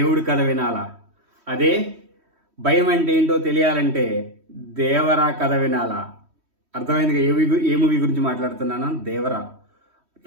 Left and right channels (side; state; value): left; late; 3.1 ms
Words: కథ వినాలా, అదే భయం అంటే ఏంటో తెలియాలంటే దేవరా కథ వినాలా. అర్థమైందిగా ఏ మూవీ గురించి మాట్లాడుతున్నాను? దేవరా.